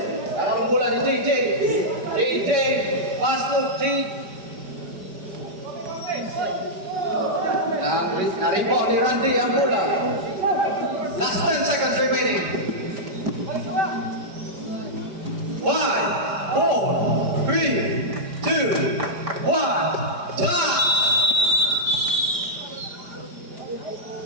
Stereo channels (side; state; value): left; late; 5.2 ms